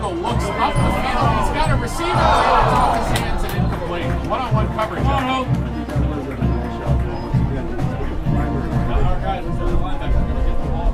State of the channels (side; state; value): both; identical; correlation 1.00